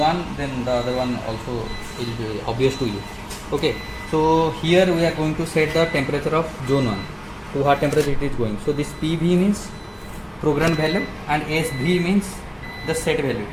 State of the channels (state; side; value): identical; both; correlation 1.00